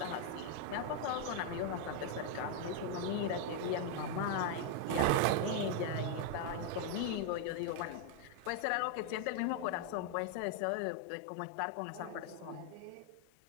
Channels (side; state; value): both; different; correlation 0.00